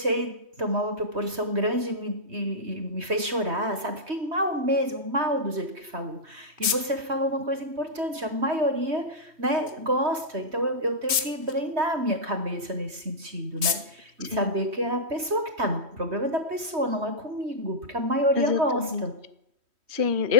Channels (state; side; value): late; left; 3.1 ms